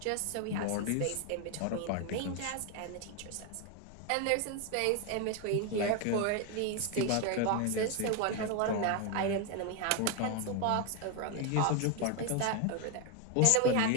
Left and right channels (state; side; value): different; both; correlation 0.01